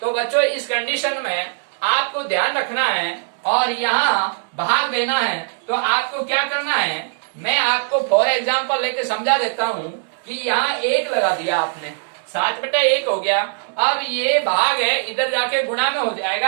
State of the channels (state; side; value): silent; left; digital silence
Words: तो बच्चों इस कंडीशन में आपको ध्यान रखना है और यहाँ भाग देना है। तो आपको क्या करना है, मैं आपको फॉर एग्जाम्पल लेके समझा देता हूँ कि यहाँ 1 लगा दिया आपने, 7/1 हो गया। अब ये भाग है, इधर जाके गुणा में हो